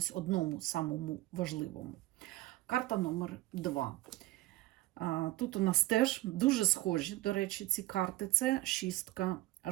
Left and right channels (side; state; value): left; quieter; 17.5 dB